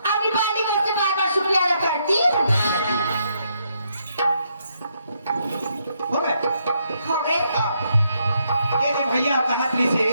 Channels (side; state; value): both; inverted; correlation -0.76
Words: आपकी पार्टी को से बार-बार शुक्रिया अदा करती हो गए ये भैया कनकरी से